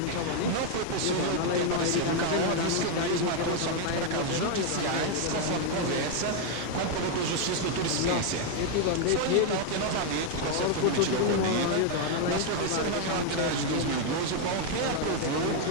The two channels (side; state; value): both; different; correlation 0.01